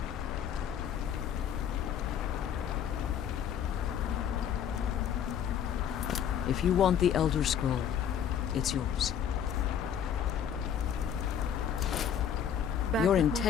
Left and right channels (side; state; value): right; quieter; 8.7 dB